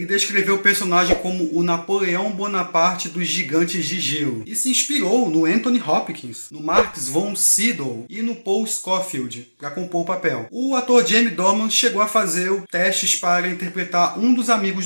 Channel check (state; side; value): inverted; both; correlation -1.00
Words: descreveu o personagem como o Napoleão Bonaparte dos gigantes de gelo e se inspirou no Anthony Hopkins, no Max von Sydow e no Paul Scofield para compor o papel. O ator Jamie Dornan chegou a fazer testes para interpretar um dos amigos